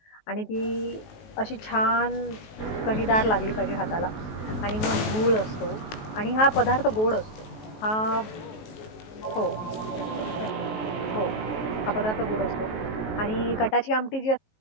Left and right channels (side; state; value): right; late; 19 ms